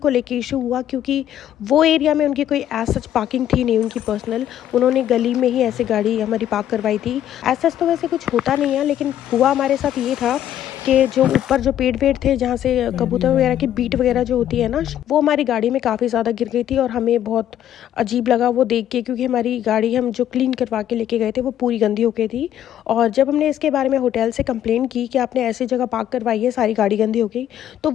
लेके इशू हुआ, क्योंकि वो एरिया में उनकी कोई एज सच पार्किंग थी नहीं उनकी पर्सनल। उन्होंने गली में ही ऐसे गाड़ी हमारी पार्क करवाई थी। एज सच तो वैसे कुछ होता नहीं है, लेकिन हुआ हमारे साथ ये था कि जो ऊपर जो पेड़ थे जहाँ से कबूतर वगैरह की बीट वगैरह जो होती है ना, वो हमारी गाड़ी में काफ़ी ज़्यादा गिर गई थी। और हमें बहुत अजीब लगा वो देख के, क्योंकि हमारी गाड़ी हम जो क्लीन करवा के लेके गए थे वो पूरी गंदी हो गई थी। और जब हमने इसके बारे में होटल से कंप्लेन की कि आपने ऐसी जगह पार्क करवाई है, सारी गाड़ी गंदी हो गई, तो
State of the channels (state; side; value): quieter; right; 11.2 dB